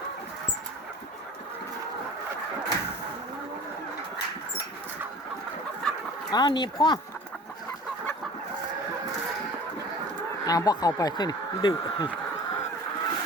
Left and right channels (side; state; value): both; normal; correlation 0.43